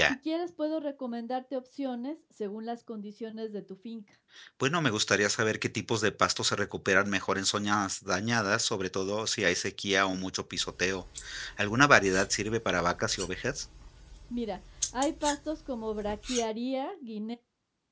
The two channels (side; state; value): both; identical; correlation 1.00